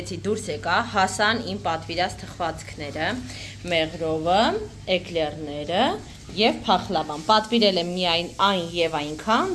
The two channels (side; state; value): both; identical; correlation 1.00